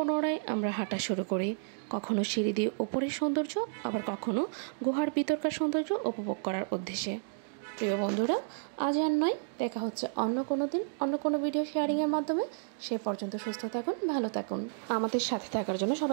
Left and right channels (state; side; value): silent; left; digital silence